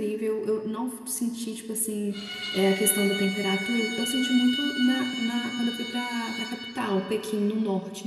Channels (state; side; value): identical; both; correlation 1.00